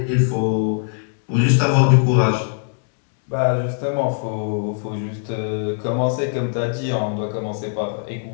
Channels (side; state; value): right; silent; digital silence